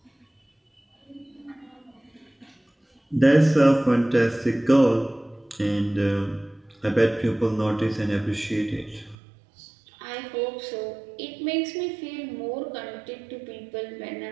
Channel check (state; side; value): drops out; left; at 9.2 s